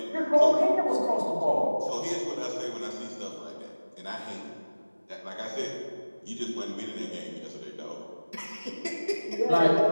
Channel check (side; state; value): both; inverted; correlation -1.00